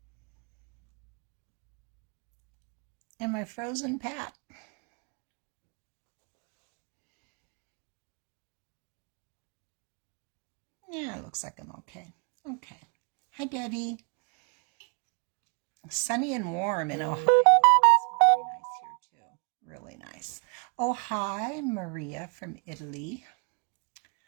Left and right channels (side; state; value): left; quieter; 39.3 dB